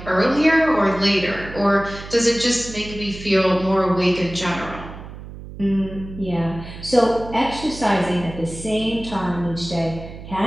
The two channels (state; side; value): noise; right; hum, 13 dB below the sound